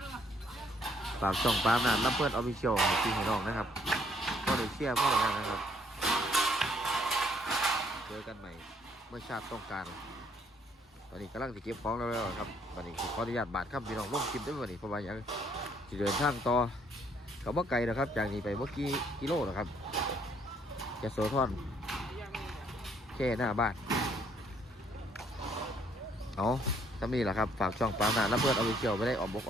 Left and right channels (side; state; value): both; normal; correlation 0.66